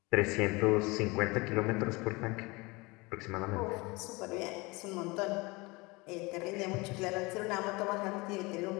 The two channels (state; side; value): quieter; right; 24.8 dB